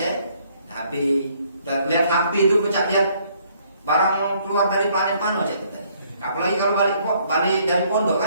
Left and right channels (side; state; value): both; inverted; correlation -0.65